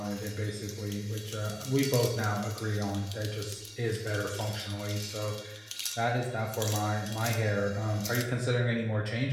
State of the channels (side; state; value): both; identical; correlation 1.00